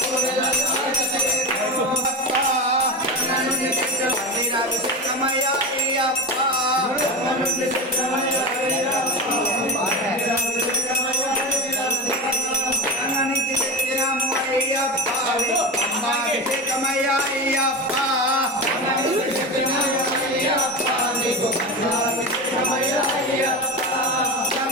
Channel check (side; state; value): both; normal; correlation 0.23